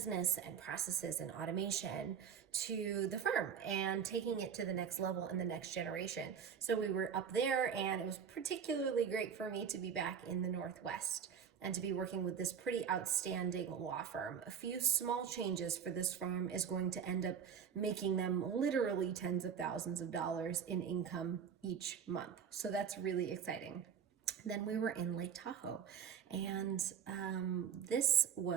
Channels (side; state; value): left; quieter; 7.4 dB